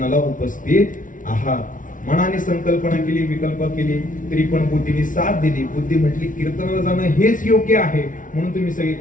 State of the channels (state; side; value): late; right; 0.38 ms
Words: उपस्थित आहात. मनाने संकल्पना केली, विकल्प केली, तरी पण बुद्धीने साथ दिली. बुद्धी म्हटली कीर्तनाला जाणं हेच योग्य आहे, म्हणून तुम्ही सगळे